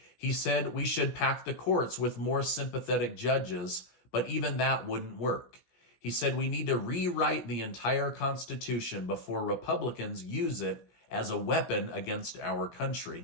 He said we should pack the courts with more sympathetic judges, but even that wouldn't work. He said we need to rewrite the entire Constitution before Republicans use it as a weapon against our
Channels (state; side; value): late; right; 17 ms